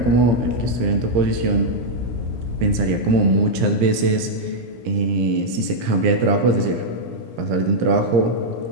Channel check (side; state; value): left; late; 17 ms